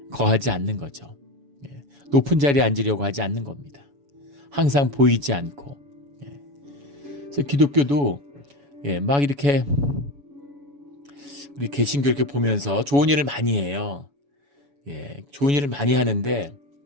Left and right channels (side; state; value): left; late; 7.1 ms